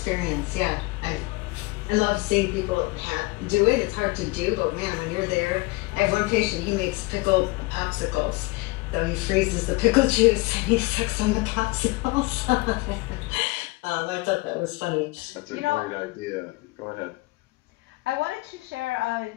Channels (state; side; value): quieter; right; 23.4 dB